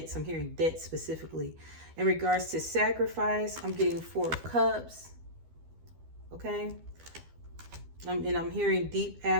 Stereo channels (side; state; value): left; late; 12 ms